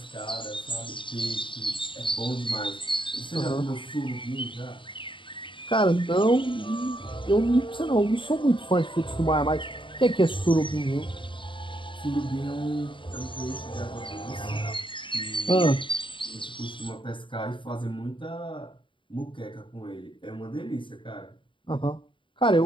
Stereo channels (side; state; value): right; late; 0.24 ms